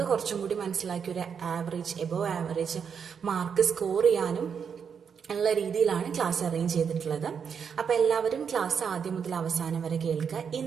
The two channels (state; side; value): quieter; left; 6.9 dB